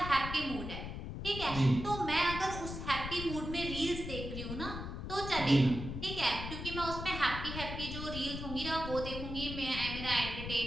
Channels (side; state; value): left; noise; rumble, 7 dB below the sound